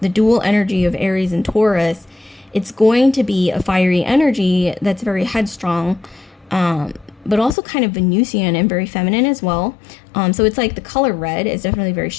the dual energy of Aries and Taurus, it's going to be a fiery energy that's very headstrong, but also kind of Venusian and very feminine as well. So it's like the color red is definitely very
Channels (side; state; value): right; drops out; at 7.6 s